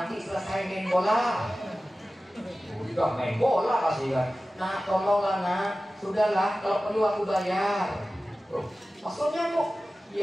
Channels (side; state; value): both; normal; correlation 0.96